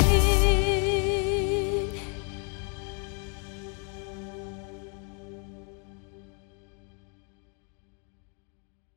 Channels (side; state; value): right; quieter; 38.0 dB